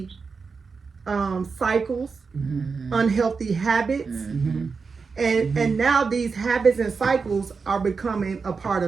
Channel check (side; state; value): left; quieter; 5.0 dB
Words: cycles, unhealthy habits. And now these habits and cycles are becoming a part